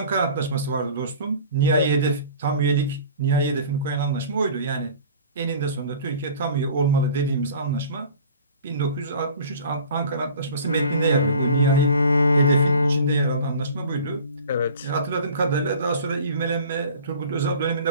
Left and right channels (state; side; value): inverted; both; correlation -0.44